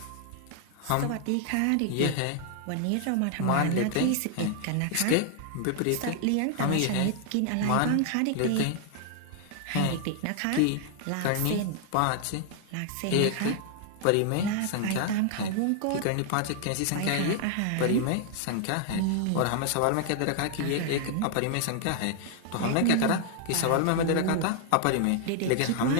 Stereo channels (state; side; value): different; both; correlation 0.00